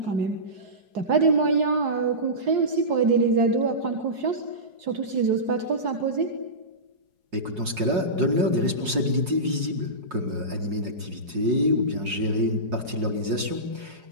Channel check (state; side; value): late; left; 5.6 ms